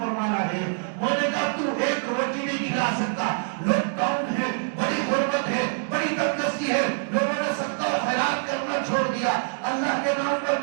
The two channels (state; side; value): silent; left; 62 dB below the other